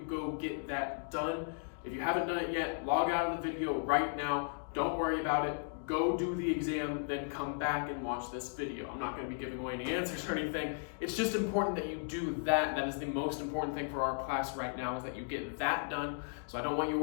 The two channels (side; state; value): right; silent; digital silence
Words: get that done. If you haven't done it yet, log out of the video right now. Don't worry about it. Go do the exam, then come back and watch this video. I'm not going to be giving away any answers or anything. It's just important that you do that. That is the most important thing for our class right now, is that you get that done. So I don't want you